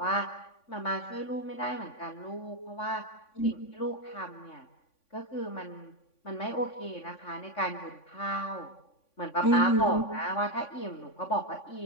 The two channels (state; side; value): late; right; 3.5 ms